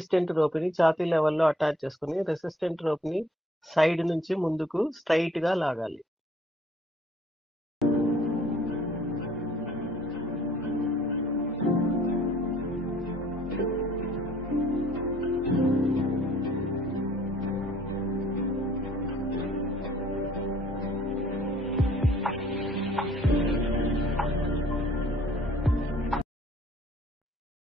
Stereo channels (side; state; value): both; normal; correlation 0.58